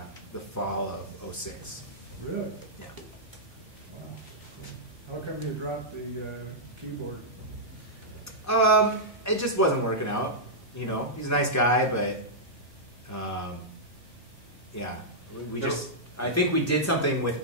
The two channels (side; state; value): both; normal; correlation -0.11